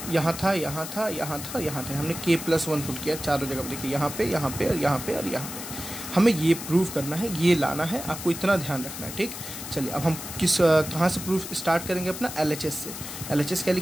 यहाँ था, हमने k + 1 पुट किया चारों जगह, देखिए यहाँ पे और यहाँ पे। हमें ये प्रूव करना है, ये लाना है, आपको इतना ध्यान रखना है, ठीक। चलिए अब हम कहाँ से प्रूफ स्टार्ट करेंगे, अपना LHS से। LHS क्या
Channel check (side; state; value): left; noise; hiss, 9 dB below the sound